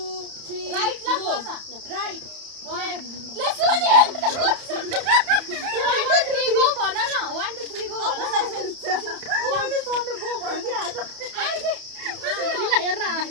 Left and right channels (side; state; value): left; late; 31 ms